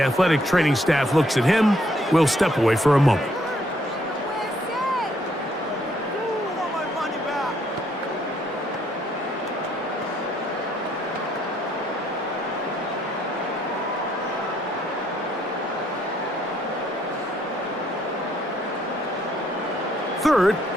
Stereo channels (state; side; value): normal; both; correlation 0.69